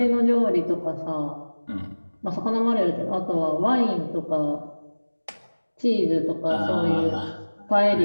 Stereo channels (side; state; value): both; inverted; correlation -1.00